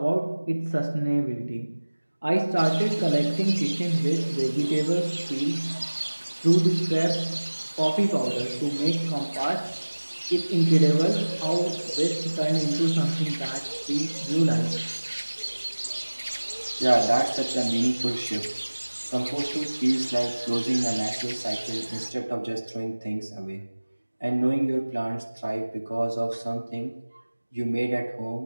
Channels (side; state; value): both; inverted; correlation -1.00